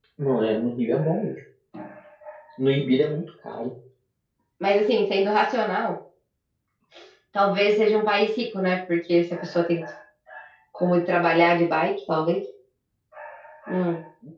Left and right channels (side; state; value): both; identical; correlation 1.00